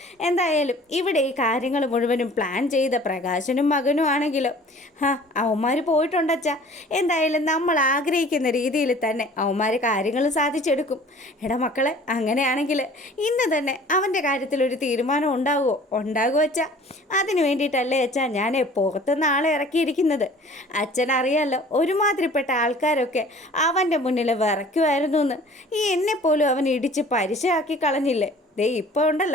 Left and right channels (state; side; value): normal; both; correlation 0.48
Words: എന്തായാലും ഇവിടെ ഈ കാര്യങ്ങൾ മുഴുവനും പ്ലാൻ ചെയ്ത പ്രകാശനും മകനും ആണെങ്കിലോ അവന്മാർ പോയിട്ടുണ്ടച്ചാ. എന്തായാലും നമ്മൾ ആഗ്രഹിക്കുന്ന രീതിയിൽ തന്നെ അവന്മാർ കാര്യങ്ങൾ സാധിച്ചെടുക്കും. എടാ മക്കളെ, അങ്ങനെയാണെങ്കിൽ ഇന്ന് തന്നെ അവൻ്റെ കാര്യത്തിലൊരു തീരുമാനം ഉണ്ടാകുമോ അച്ഛാ? അതിന് വേണ്ടിയിട്ടല്ലേ അച്ഛാ ഞാൻ പുറത്തുനിന്ന് ആളെ ഇറക്കിയിരിക്കുന്നത്. അച്ഛനറിയാമല്ലോ ഒരുമാതിരിപ്പെട്ട ആൾക്കാരൊക്കെ അവൻ്റെ മുന്നിൽ വിറയ്ക്കുമായിരുന്നു എന്ന്. എന്നെപ്പോലും അവൻ ഇടിച്ച് പരിശയാക്കി കളഞ്ഞില്ലേ? ഇപ്പോൾ